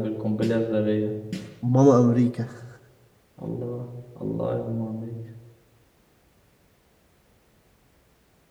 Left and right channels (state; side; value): identical; both; correlation 1.00